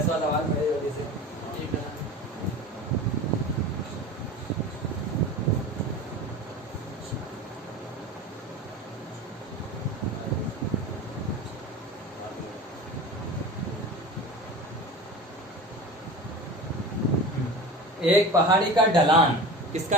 सवाल। बड़े जल्दी से एक पहाड़ी का ढलान,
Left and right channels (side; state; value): both; normal; correlation 0.34